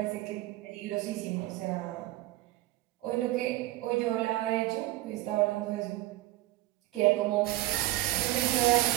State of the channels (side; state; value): left; quieter; 17.1 dB